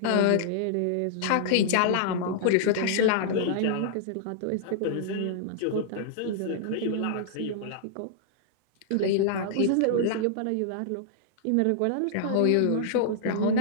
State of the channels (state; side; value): different; both; correlation -0.01